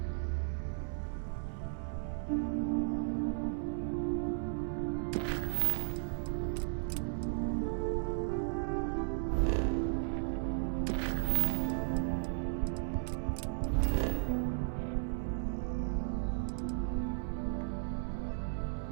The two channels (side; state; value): left; silent; 54 dB below the other